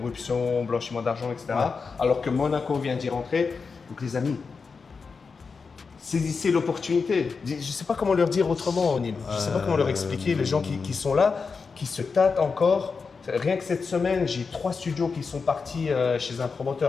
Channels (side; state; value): right; quieter; 5.0 dB